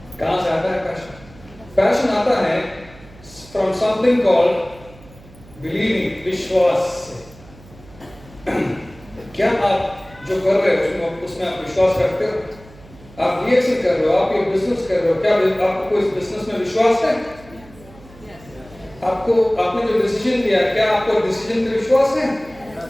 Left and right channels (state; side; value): noise; right; hum, 22 dB below the sound